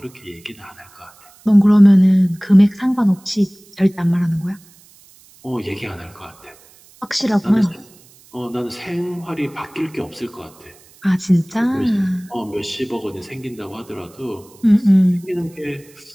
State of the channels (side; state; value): right; noise; hiss, 27 dB below the sound